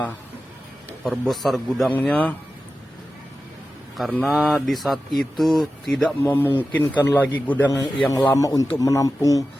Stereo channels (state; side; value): normal; both; correlation 0.93